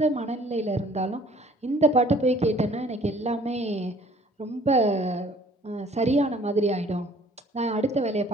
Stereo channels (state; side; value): normal; both; correlation 0.55